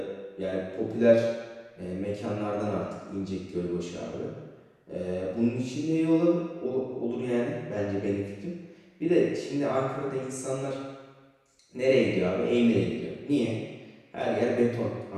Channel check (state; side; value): identical; both; correlation 1.00